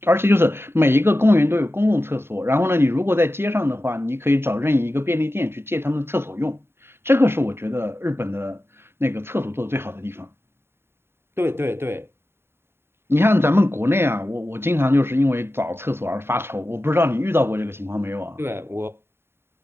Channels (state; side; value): late; left; 0.11 ms